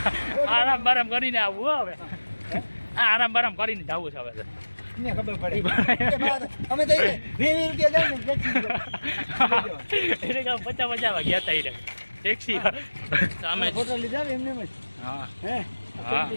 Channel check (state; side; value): inverted; both; correlation -1.00